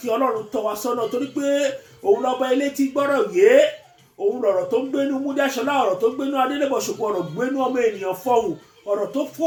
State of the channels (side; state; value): both; identical; correlation 1.00